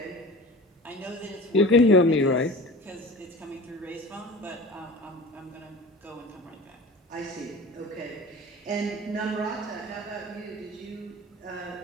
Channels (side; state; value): both; normal; correlation 0.38